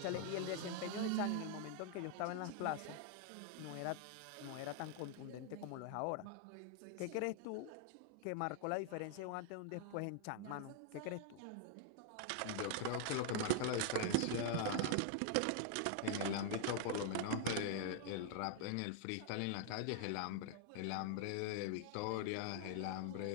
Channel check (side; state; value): both; different; correlation 0.00